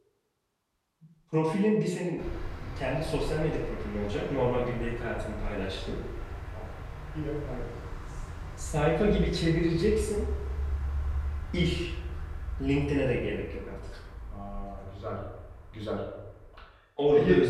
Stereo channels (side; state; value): both; identical; correlation 1.00